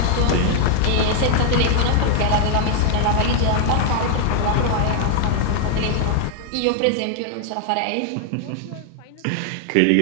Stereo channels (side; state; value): both; different; correlation 0.00